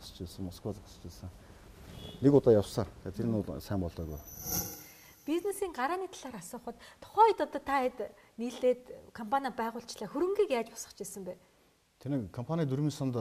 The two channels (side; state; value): both; identical; correlation 1.00